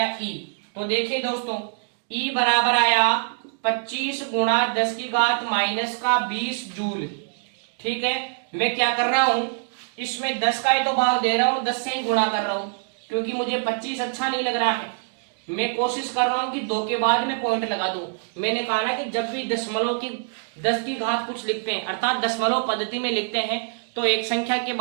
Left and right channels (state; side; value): silent; left; digital silence